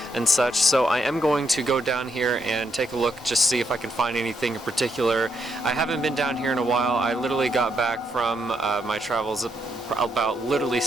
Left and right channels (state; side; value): normal; both; correlation 0.77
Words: and such. So I am going to go down here and take a look, just see if I can find anything in particular. I haven't been down here in a while. I literally got back from my travels about literally